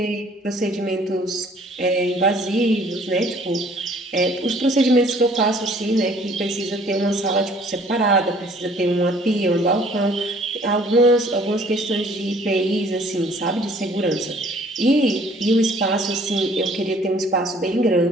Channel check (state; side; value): normal; both; correlation 0.56